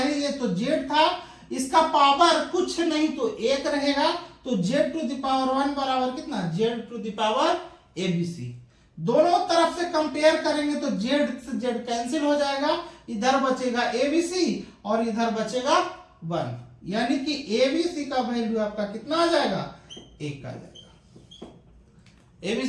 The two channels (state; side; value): identical; both; correlation 1.00